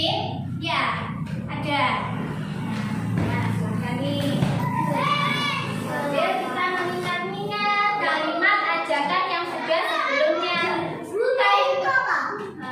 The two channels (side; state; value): both; identical; correlation 1.00